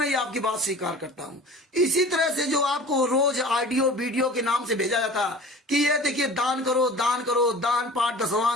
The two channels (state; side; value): normal; both; correlation 0.41